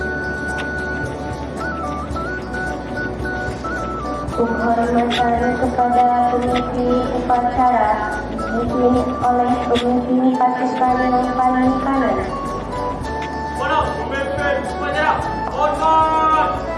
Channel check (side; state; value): both; identical; correlation 1.00